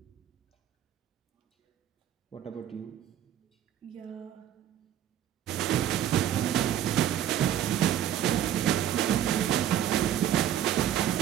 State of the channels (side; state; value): left; quieter; 10.8 dB